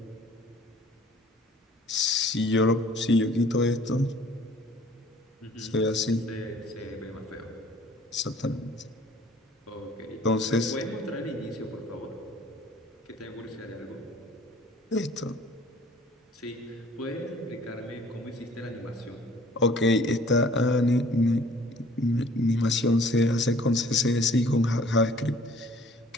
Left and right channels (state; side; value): normal; both; correlation 0.53